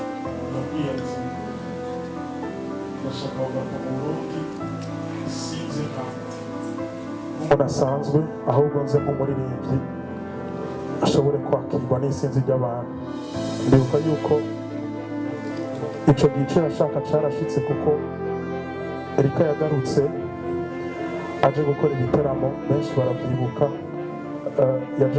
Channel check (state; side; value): identical; both; correlation 1.00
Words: nabwiye ati ndashaka kugaruka mu Burundi sinze nk'umuntu asanzwe ahubwo nze nk'umuririmbyi ashobore kwakirwa n'isinzi ry'abantu ndibuka yuko ico gice yashaka carashitse kuko Erika yagarutse aje gukora igiteramo benshi baravyibuka yaje